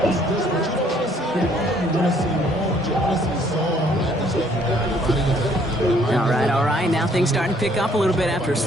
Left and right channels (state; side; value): normal; both; correlation 0.63